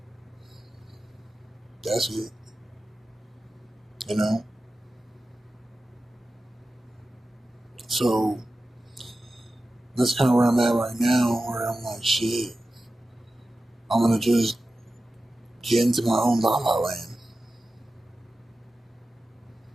That's it. You know? So, that's kind of where I'm at right now, where I'm like, shit, I'm going to just get into my own La La Land.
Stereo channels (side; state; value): both; normal; correlation 0.94